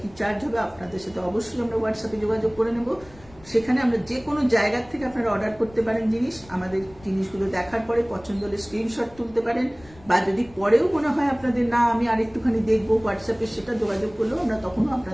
কি চার্জ হবে আপনাদের সাথে অবশ্যই আমরা হোয়াটসঅ্যাপে যোগাযোগ করে নেব। সেখানে আমরা যে কোনো জায়গার থেকে আপনারা অর্ডার করতে পারেন জিনিস। আমাদের জিনিসগুলো দেখার পরে পছন্দ হলে স্ক্রিনশট তুলতে পারেন, বা যদি পরেও মনে হয় আপনাদের না আমি আরেকটুখানি দেখবো হোয়াটসঅ্যাপে, সেটা যোগাযোগ করলেও আমরা তখনও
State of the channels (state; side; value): noise; left; rumble, 23 dB below the sound